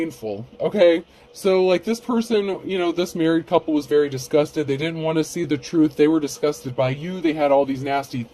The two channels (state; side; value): identical; both; correlation 1.00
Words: okay? So, like, this person, you know, this married couple was very disgusted. They didn't want to see the truth. They were disgusted by you. They had all these nasty